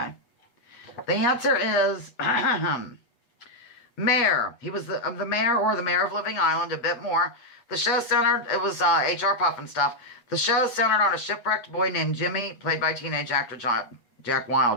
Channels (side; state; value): right; late; 8.2 ms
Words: The answer is mayor. He was the mayor or the mayor of Living Island, a bit more. The show centered, it was H.R. Puff and stuff. The show centered on a shipwrecked boy named Jimmy, played by teenage actor Jack